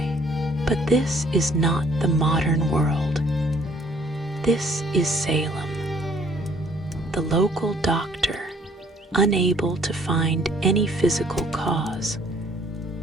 But this is not the modern world. This is Salem. The local doctor, unable to find any physical cause,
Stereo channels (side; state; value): both; normal; correlation 0.60